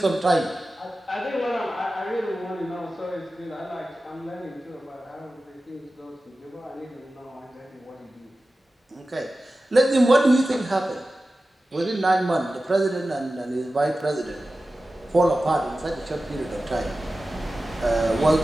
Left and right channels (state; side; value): normal; both; correlation 0.95